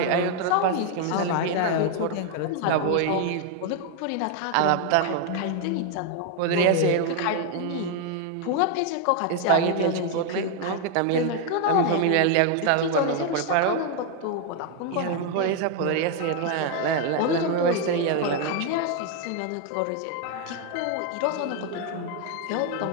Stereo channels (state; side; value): different; both; correlation 0.01